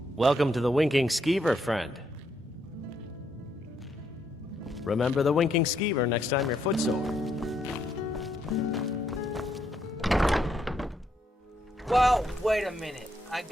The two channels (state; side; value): normal; both; correlation 0.75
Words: Welcome to the Winking Skeever, friend. Remember the Winking Skeever next time your foot's sore. Well, wait a minute. I